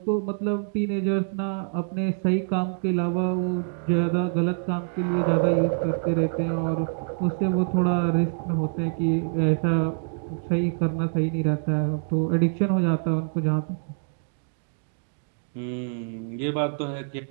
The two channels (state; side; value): silent; left; digital silence